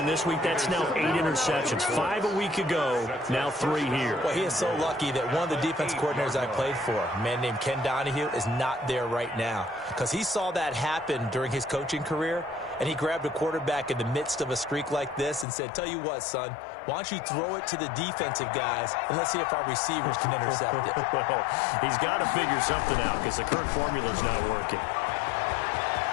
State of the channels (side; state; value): right; drops out; at 15.5 s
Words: this week, that's now 8 interceptions. 5 a week ago, now 3 here. Well, he is so lucky that one of the defense coordinators I played for, a man named Ken Donahue, is not there right now. Because he saw that happen during his coaching career, and he grabbed a quarterback in the midst of a streak like this and said, tell you what, son, why don't you throw it to the defensive guys, and let's see if our receivers can intercept it. Well, he's got to figure something out because the current formula's not working.